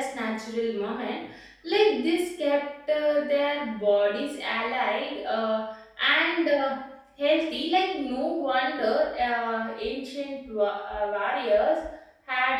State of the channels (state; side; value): identical; both; correlation 1.00